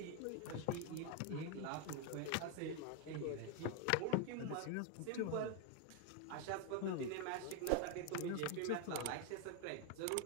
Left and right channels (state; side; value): different; both; correlation 0.01